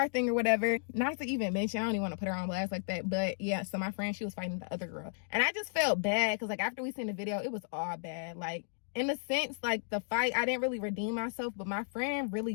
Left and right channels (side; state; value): right; silent; digital silence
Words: thing or whatever. Not to even mention, I don't even want to put her on blast like that. But yeah, so my friend, she was fighting the other girl. And I just felt bad because like after we seen the video, it was all bad. Like, in a sense, like the fight, I didn't really redeem myself, but my friend really